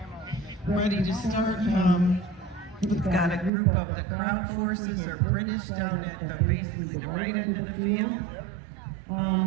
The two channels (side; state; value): left; drops out; at 3.5 s